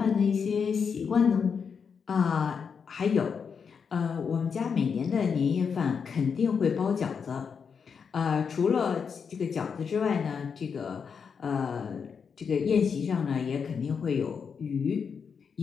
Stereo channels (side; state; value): right; quieter; 6.3 dB